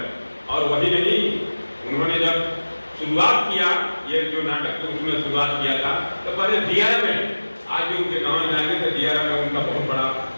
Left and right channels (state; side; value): inverted; both; correlation -1.00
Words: और वही नहीं, उन्होंने जब शुरुआत किया ये जो नाटक तो उसमें शुरुआत किया था, तो पहले दियारा में, आज भी उनके गाँव में जाएंगे तो दियारा में उनका बहुत बड़ा